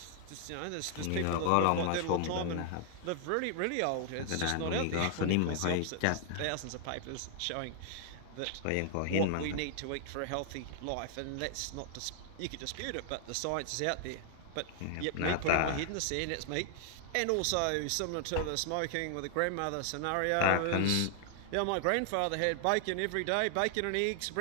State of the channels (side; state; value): both; different; correlation 0.00